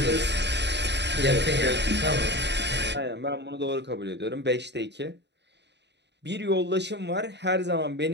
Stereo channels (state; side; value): late; left; 0.50 ms